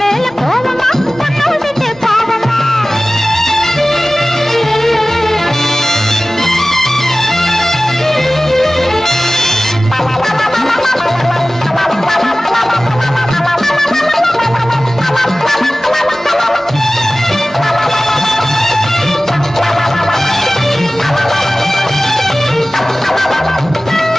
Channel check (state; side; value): normal; both; correlation 0.97